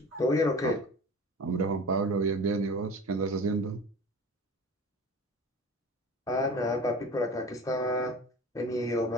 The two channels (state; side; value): normal; both; correlation 0.38